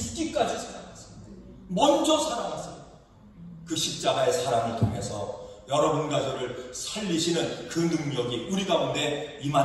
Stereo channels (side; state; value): both; identical; correlation 1.00